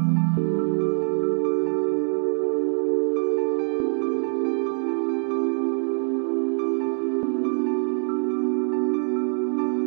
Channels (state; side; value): silent; left; 59 dB below the other